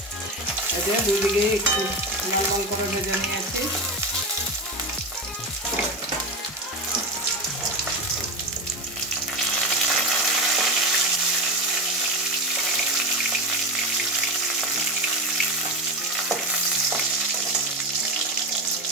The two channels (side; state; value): both; normal; correlation 0.18